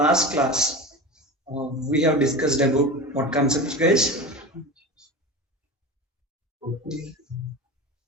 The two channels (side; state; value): both; normal; correlation 0.29